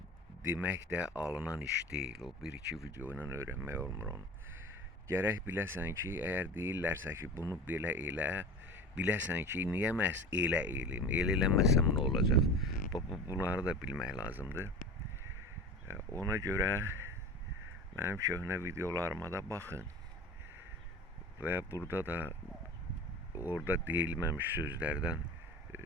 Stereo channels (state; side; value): normal; both; correlation 0.35